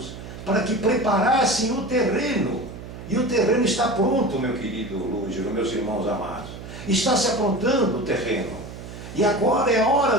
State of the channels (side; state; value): right; noise; hum, 12 dB below the sound